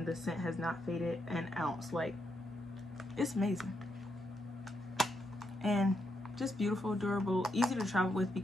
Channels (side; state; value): both; normal; correlation 0.80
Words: the scent has not faded an ounce. Like, it's amazing and just beautiful, durable, easy to travel with